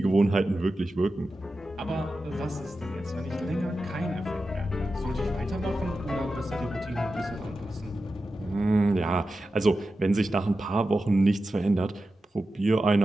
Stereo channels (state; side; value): normal; both; correlation 0.92